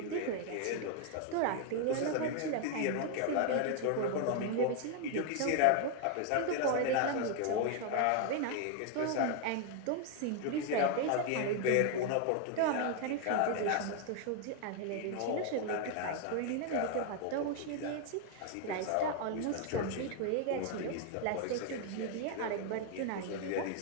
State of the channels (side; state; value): both; different; correlation 0.00